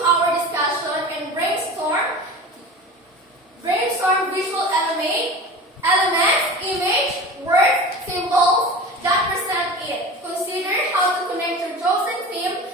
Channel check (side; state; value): both; normal; correlation 0.34